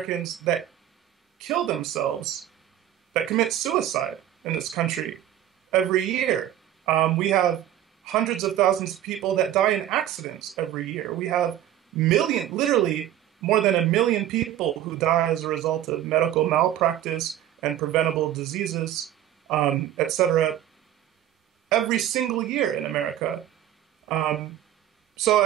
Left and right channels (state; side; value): quieter; left; 11.9 dB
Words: that kill themselves, that commit suicide in this country every year. We have hundreds of thousands of people that die in accidents every year. We have literally more than 1 million people who die as a result of medical malpractice and preventable diseases, etc., every single year in America. So,